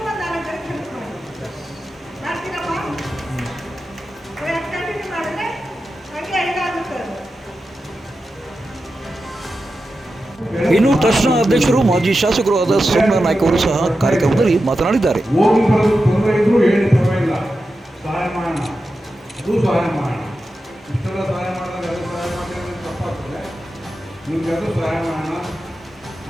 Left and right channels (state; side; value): normal; both; correlation 0.91